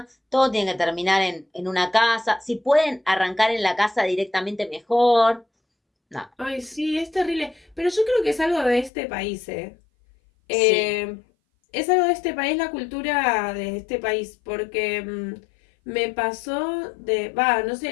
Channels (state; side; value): drops out; right; at 8.9 s